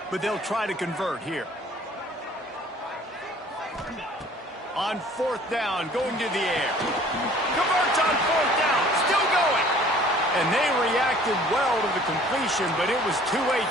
but they'll try to convert here. On 4th down, going to the air. Converts on 4th down, still going. And they reacted well to the completion, but it was too late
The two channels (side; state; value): both; normal; correlation 0.52